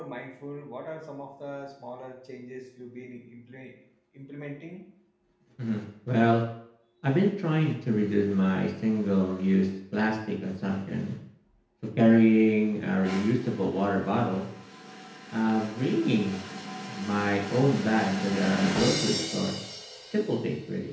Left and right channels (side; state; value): both; identical; correlation 1.00